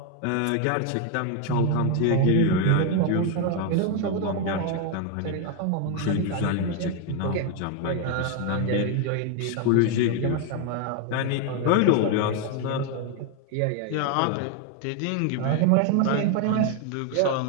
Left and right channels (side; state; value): both; different; correlation 0.01